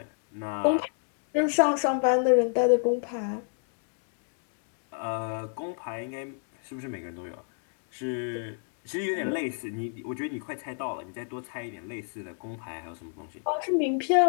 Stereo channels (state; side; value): silent; right; 58 dB below the other